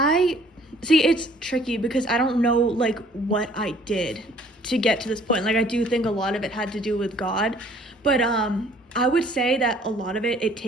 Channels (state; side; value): normal; both; correlation 0.56